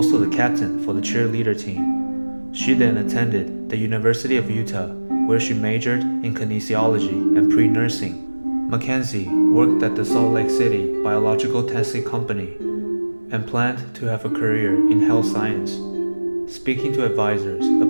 the captain for the cheerleader team. She then attended the University of Utah, where she majored in kinesiology and pre-nursing. Mackenzie worked at the Salt Lake City Biological Testing Company and planned to have a career in health science, speaking to advisors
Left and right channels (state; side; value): inverted; both; correlation -1.00